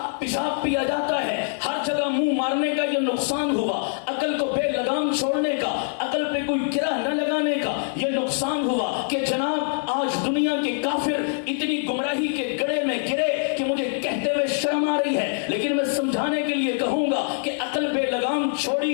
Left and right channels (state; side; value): silent; right; 58 dB below the other